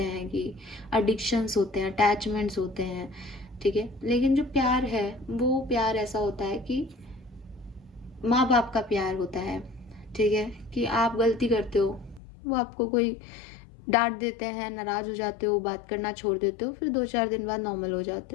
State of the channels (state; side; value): drops out; right; at 12.2 s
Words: हैं, कि एडिक्शंस होते हैं, अटैचमेंट्स होते हैं। ठीक है, लेकिन जो प्यार है वो प्यार ऐसा होता है कि माँ बाप का प्यार होता है। ठीक है, कि आप गलती करते हो, वो आपको कोई डांट देते हैं, नाराज हो जाते हो, बात करना छोड़ देते हो, फिर 2-4 दिन बाद नॉर्मल हो